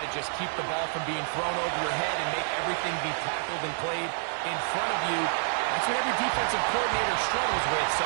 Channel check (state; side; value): silent; left; digital silence